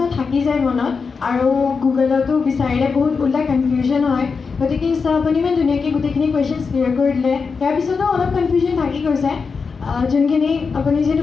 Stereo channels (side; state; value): right; quieter; 5.1 dB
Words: থাকি যায় মনত আৰু গুগলতো বিচাৰিলে বহুত ওলাই কনফিউজন হয় গতিকে আপুনি ইমান ধুনীয়াকৈ গোটেইখিনি কুৱেশ্যনছ ক্লিয়াৰ কৰি দিলে ইয়াৰ পিছতো অলপ কনফিউজন থাকি গৈছে যোনখিনি আপুনি যিহেতু